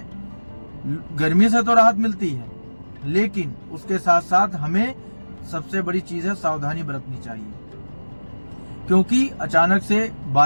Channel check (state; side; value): inverted; both; correlation -1.00